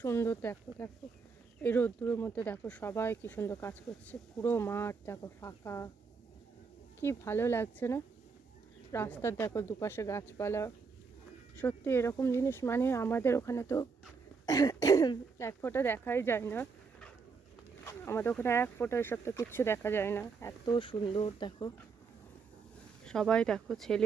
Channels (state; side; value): quieter; left; 5.1 dB